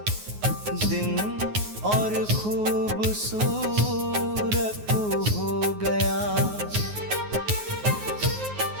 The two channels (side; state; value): left; late; 9.5 ms